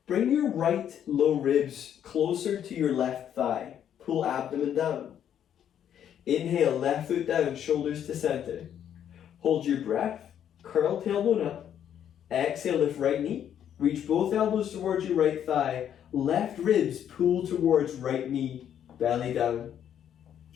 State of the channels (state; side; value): quieter; right; 9.6 dB